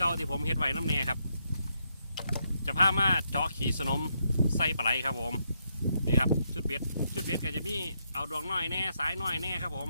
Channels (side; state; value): both; inverted; correlation -0.79